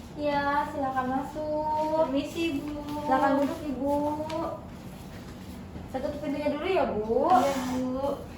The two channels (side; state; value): both; identical; correlation 1.00